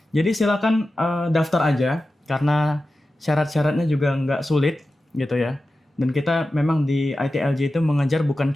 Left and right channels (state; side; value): normal; both; correlation 0.93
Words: Jadi silakan daftar aja karena syarat-syaratnya juga nggak sulit gitu ya. Dan kita memang di ITLJ itu mengajar bukan